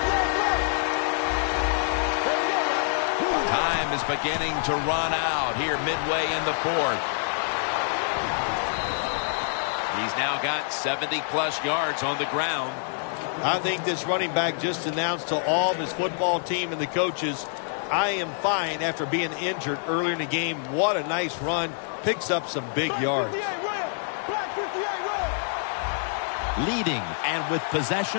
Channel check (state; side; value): silent; right; digital silence